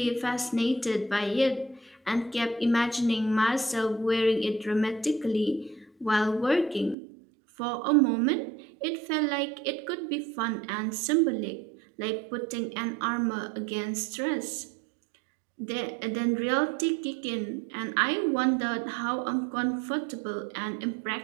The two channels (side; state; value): left; drops out; at 7.0 s